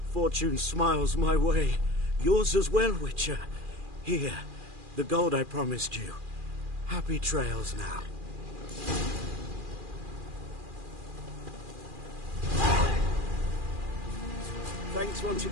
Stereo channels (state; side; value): late; left; 2.4 ms